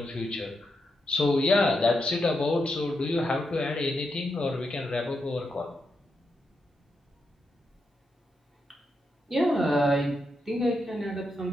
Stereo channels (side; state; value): both; normal; correlation 0.84